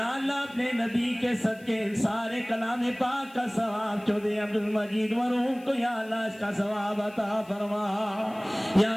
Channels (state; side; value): noise; left; hiss, 26 dB below the sound